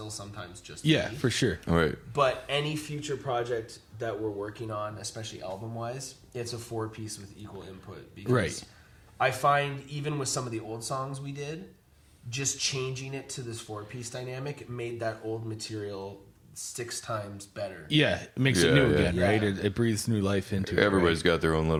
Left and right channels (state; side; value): identical; both; correlation 1.00